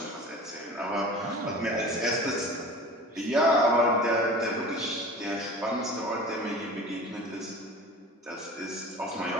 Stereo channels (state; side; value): normal; both; correlation 0.39